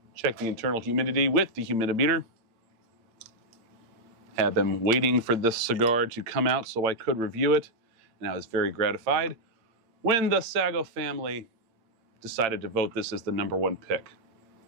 check the internal humidity with the humidimeter. Have been waiting for this cigar to come out so I could review it, and I was very gratified when the Sago family decided to vote this as the #1 pick.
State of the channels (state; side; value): late; left; 8.8 ms